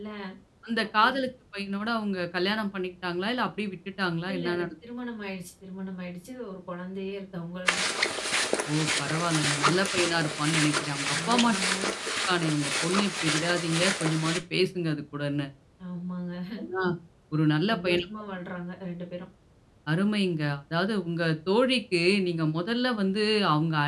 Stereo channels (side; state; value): both; identical; correlation 1.00